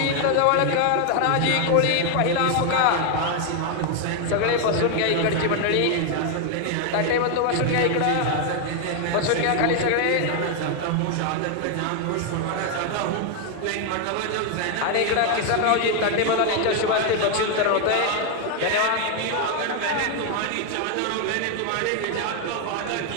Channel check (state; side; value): different; both; correlation 0.01